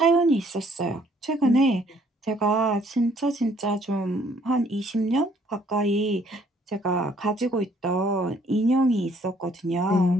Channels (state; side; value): normal; both; correlation 0.63